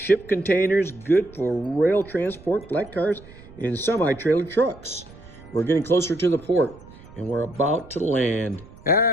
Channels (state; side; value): noise; right; rumble, 21 dB below the sound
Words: containers, good for rail transport, flat cars, and semi-trailer trucks. We're getting closer to the port, and we're about to land.